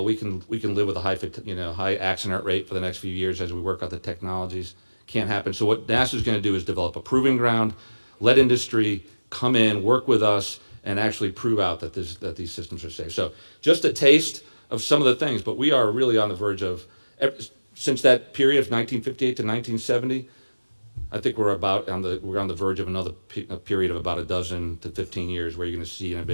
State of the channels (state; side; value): inverted; both; correlation -1.00